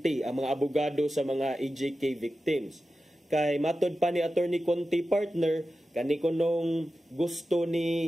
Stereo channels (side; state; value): both; normal; correlation 0.93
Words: ang mga abogado sa mga EJK victims. Kay matod pa ni attorney Conte partner kani kunong gusto